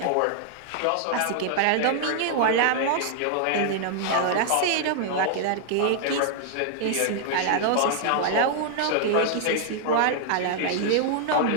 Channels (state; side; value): different; both; correlation 0.00